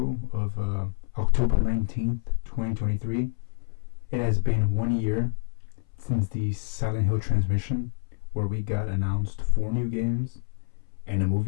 of October 19th, 2023, it has been 1 year since the Silent Hill transmission, where we got announced 4 new games and a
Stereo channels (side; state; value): right; silent; 60 dB below the other